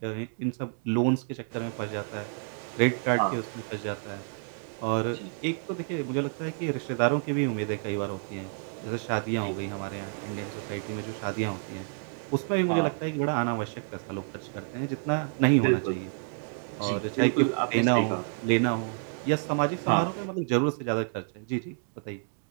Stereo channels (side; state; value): left; silent; 58 dB below the other